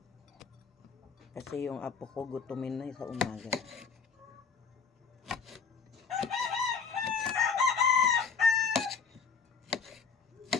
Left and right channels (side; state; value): right; quieter; 5.6 dB